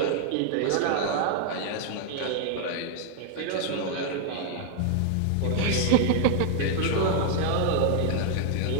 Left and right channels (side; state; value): both; different; correlation 0.00